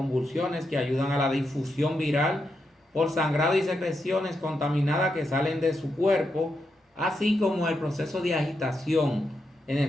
que ayudan a la difusión viral por sangrado y secreciones contaminadas que salen de su cuerpo, así como el proceso de agitación en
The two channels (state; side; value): normal; both; correlation 0.84